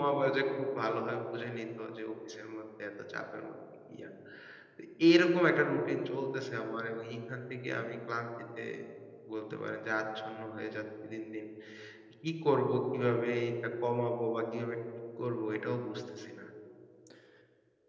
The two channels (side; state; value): both; identical; correlation 1.00